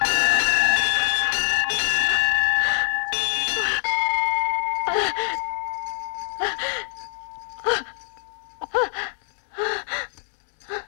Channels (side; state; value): right; silent; 62 dB below the other